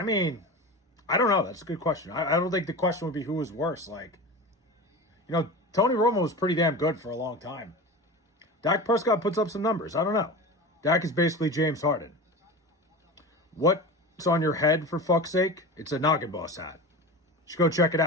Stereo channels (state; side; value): normal; both; correlation 0.29